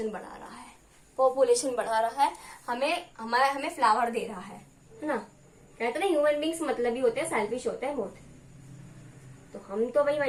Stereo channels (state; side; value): identical; both; correlation 1.00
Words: बढ़ा रहा है, पॉपुलेशन बढ़ा रहा है, हमें फ्लावर दे रहा है ना। कहते ना ह्यूमन बींग्स मतलब ही होते हैं, सेल्फिश होते हैं बहुत, तो हम तो भाई